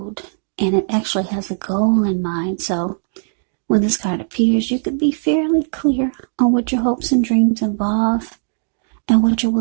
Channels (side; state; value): left; silent; digital silence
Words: and it actually has a goal in mind. So when this card appears, you could be fairly clear on what your hopes and dreams involve and what you're